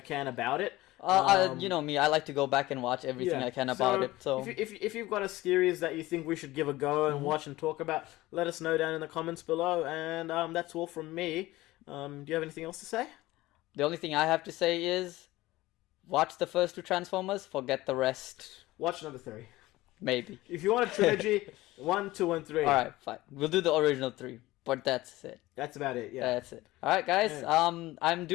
about it. You know me, I like to go back and watch everything I can about it. So if you've got a series that you think we should give a go and watch and talk about, let us know down in the comments below. And that's all from me. Do you have anything else to say? The only thing I have to say is, watch the first 2 Transformers, forget the rest. Watch number 3. Maybe. If you want a trilogy, 1, 2, and 3. Alright, fine. We'll do the original 3. But that's it. That's about it, yeah. That's it. Alright, guys. I'm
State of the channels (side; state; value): right; quieter; 18.1 dB